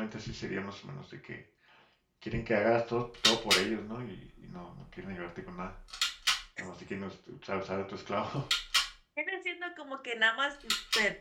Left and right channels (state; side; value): identical; both; correlation 1.00